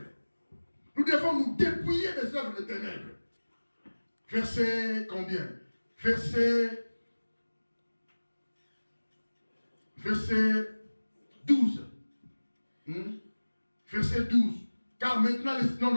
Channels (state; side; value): inverted; both; correlation -1.00